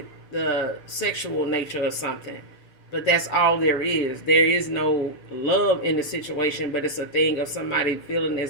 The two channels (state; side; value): late; right; 6.7 ms